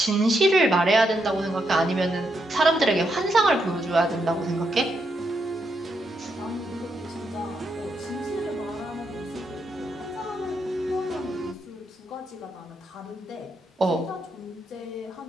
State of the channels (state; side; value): normal; both; correlation 0.80